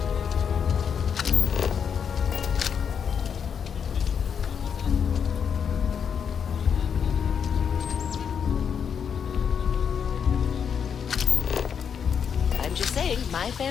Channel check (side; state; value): right; quieter; 7.2 dB